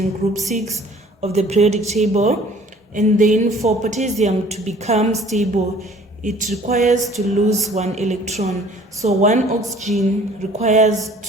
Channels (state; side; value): normal; both; correlation 0.52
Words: group 6 of the periodic table. And then for potassium to become stable, it requires to lose 1 electron. So 1 oxygen requires